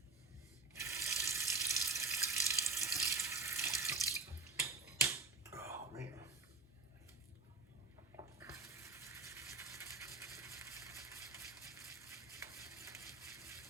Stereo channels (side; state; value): left; quieter; 3.9 dB